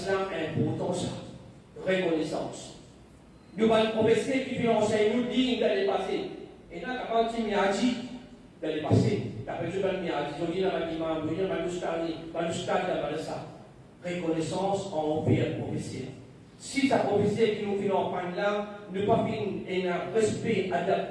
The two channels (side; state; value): both; identical; correlation 1.00